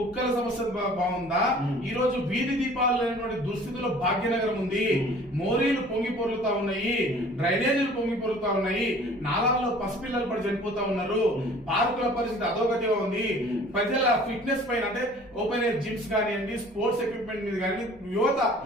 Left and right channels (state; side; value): noise; left; rumble, 27 dB below the sound